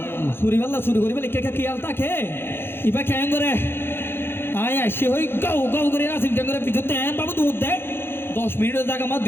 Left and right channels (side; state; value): right; late; 0.11 ms